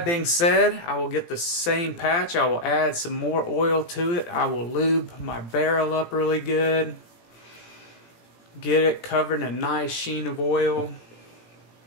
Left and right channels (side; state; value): right; late; 17 ms